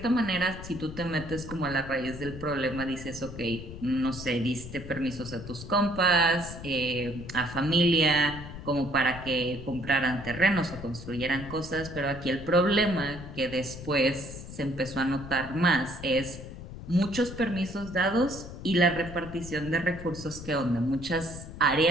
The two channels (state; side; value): noise; left; rumble, 12 dB below the sound